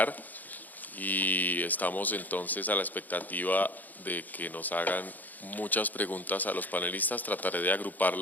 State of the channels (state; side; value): late; right; 0.083 ms